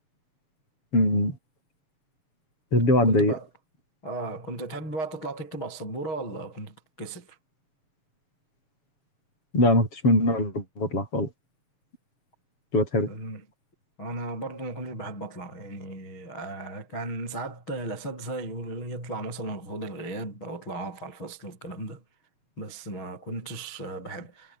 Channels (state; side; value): late; right; 6.4 ms